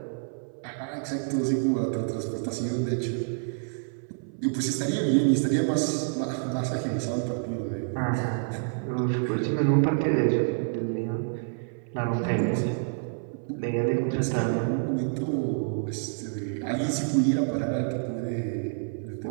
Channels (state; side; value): silent; left; 59 dB below the other